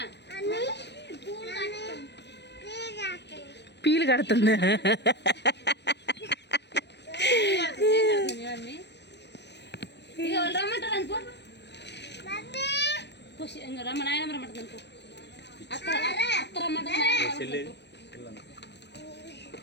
పీలు కడుతుంది. ఇక వాళ్ళు రమ్మంటారు అనుకో, రమ్మ నాయనమ్మ రమ్మంటుంది అనుకో, అత్త రమ్మంటుంది.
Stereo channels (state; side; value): late; right; 0.50 ms